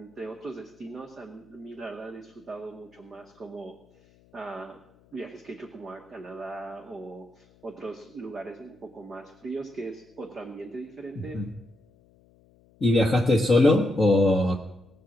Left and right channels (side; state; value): left; noise; hum, 30 dB below the sound